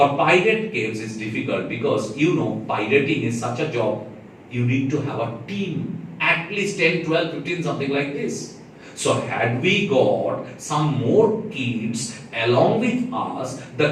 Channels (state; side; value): identical; both; correlation 1.00